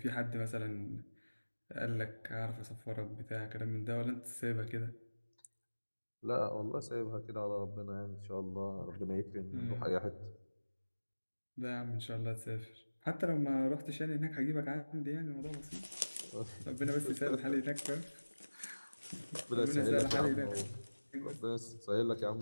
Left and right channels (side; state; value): both; inverted; correlation -1.00